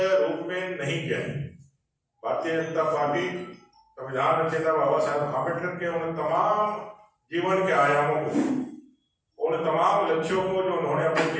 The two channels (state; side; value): identical; both; correlation 1.00